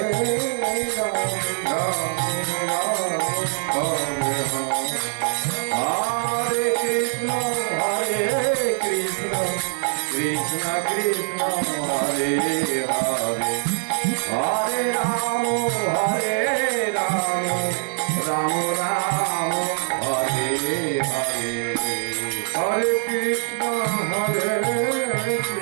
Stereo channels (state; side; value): silent; left; digital silence